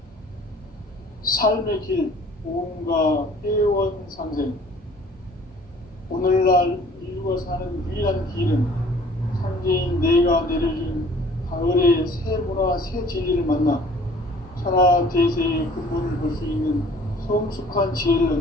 삶의 길, 보험과 회원상생. 오늘날 인류가 사는 유일한 길은 상제인 내가 내려준 가을의 새 문화, 새 진리를 만나 천하 대세의 근본을 볼 수 있는 성숙한 지혜를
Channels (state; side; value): normal; both; correlation 0.52